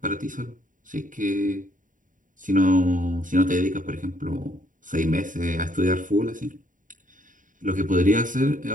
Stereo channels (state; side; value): late; left; 0.38 ms